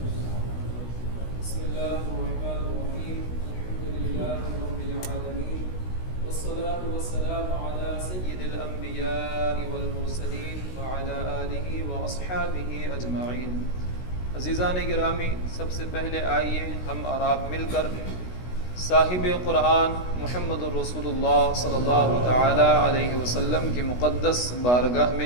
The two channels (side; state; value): right; late; 16 ms